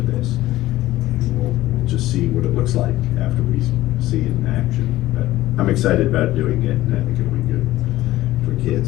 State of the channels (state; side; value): quieter; right; 16.0 dB